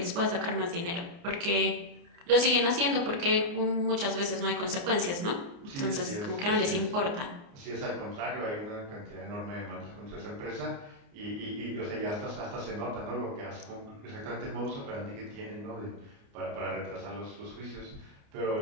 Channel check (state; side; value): late; left; 29 ms